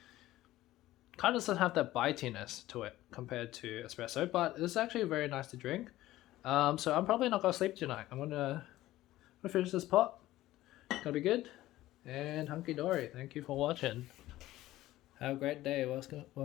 kind of doesn't have that bitiness to it compared to espresso, but it's actually very nice to drink. So I'm probably not gonna sleep tonight. I'm gonna finish this pot. It's gonna be good. And hunky dory. Thank you for watching. Have a great day.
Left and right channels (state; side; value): quieter; right; 15.8 dB